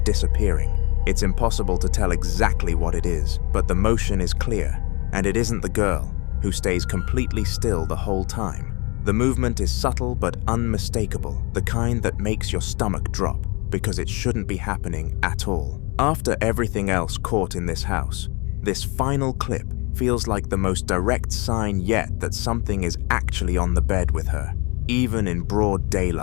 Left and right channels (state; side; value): quieter; right; 29.2 dB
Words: It's impossible to tell exactly what it is, but the motion is clear, and it isn't the girl, who stays completely still the whole time. The movement is subtle but unmistakable, the kind that makes your stomach drop, because it shouldn't be happening at all. After everything else caught in this house, this final clip feels like the most direct sign yet that something is actually on the bed with her, even in broad